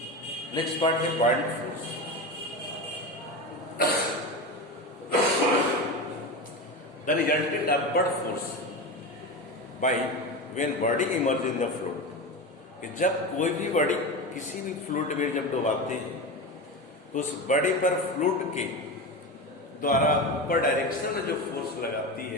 नेक्स्ट पार्ट है buoyant force. The resultant upward force by when body immerse in the fluid. कि जब कोई भी बॉडी किसी भी फ्लूइड में जब डुबाते हैं, तो उस बॉडी पर फ्लूइड के द्वारा ऊपर डायरेक्शन में जो फोर्स लगाती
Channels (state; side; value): normal; both; correlation 0.22